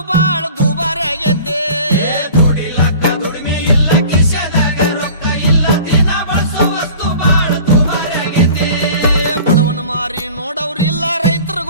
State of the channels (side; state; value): both; inverted; correlation -0.43